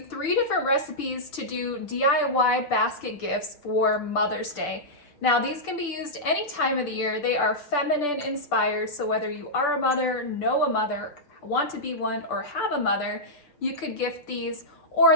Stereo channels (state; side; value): late; right; 6.9 ms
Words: different recipes to do DIY basket gifts for Mother's Day. Now these can be used any time of the year. They are feminine inspired, so whether you are a mother, know a mother, want to be one, or have a mother, you could gift these, or